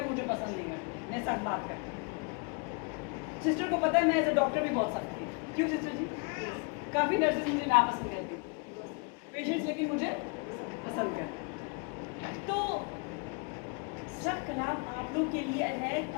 مجھے پسند نہیں کرتے, میں سخت بات کرتا ہوں. सिस्टर को पता है मैं एज अ डॉक्टर भी बोल सकती हूँ, क्यों सिस्टर जी? काफ़ी नर्सेज मुझे नापसंद करती हैं, पेशेंट्स लेकिन मुझे पसंद करते। तो सब कलाम आप लोग के लिए है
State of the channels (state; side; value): quieter; right; 34.1 dB